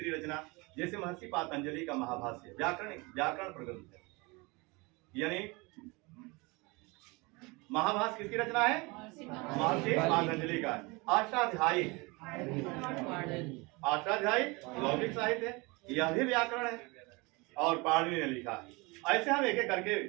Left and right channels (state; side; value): quieter; left; 26.2 dB